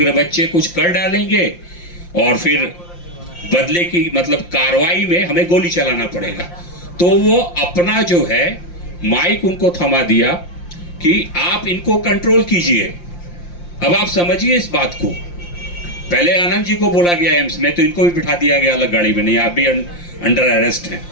बच्चे कुछ कर डालेंगे और फिर बदले की मतलब कार्रवाई में हमें गोली चलाना पड़ेगा। तो वो अपना जो है माइक उनको थमा दिया कि आप इनको कंट्रोल कीजिए। अब आप समझिए इस बात को। पहले आनंद जी को बोला गया एम्स में, तो इनको भी बिठा दिया गया अलग गाड़ी में, नहीं आप भी अंडर अरेस्ट हैं।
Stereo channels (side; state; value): right; late; 5.7 ms